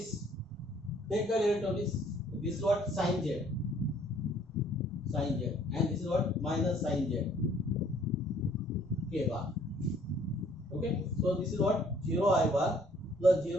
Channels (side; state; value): both; normal; correlation 0.60